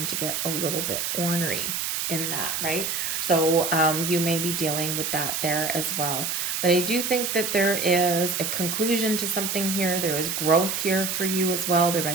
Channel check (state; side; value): noise; right; hiss, 1 dB below the sound